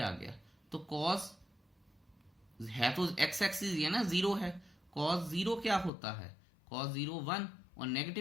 गया तो cos है तो x एक्सिस ये ना 0 है, cos 0 क्या होता है cos 0 1 और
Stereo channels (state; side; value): drops out; right; at 5.9 s